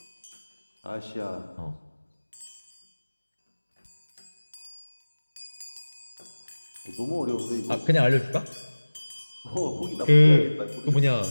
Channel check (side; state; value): both; inverted; correlation -1.00